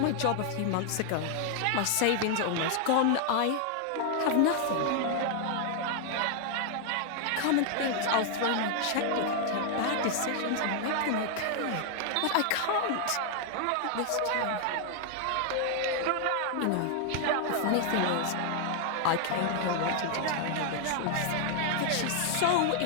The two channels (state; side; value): different; both; correlation 0.00